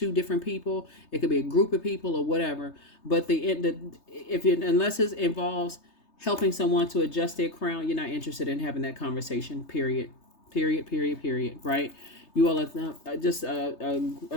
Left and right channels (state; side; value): late; right; 3.3 ms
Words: different people. It could be a group of people or whatever. But unless it involves helping someone to adjust their crown, you're not interested in having that conversation. Period. Right? You all are just,